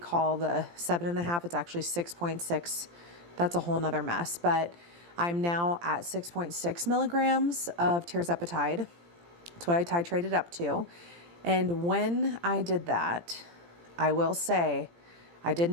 the 7.5. It's actually 6.6. That's a whole nother mess. But I'm now at 6.6 milligrams of tirzepatide. That's what I titrated up to. And when I did that, I will say I did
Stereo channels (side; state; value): left; late; 17 ms